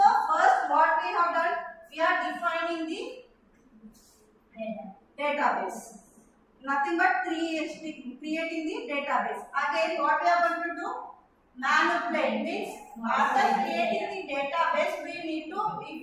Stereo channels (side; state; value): both; identical; correlation 1.00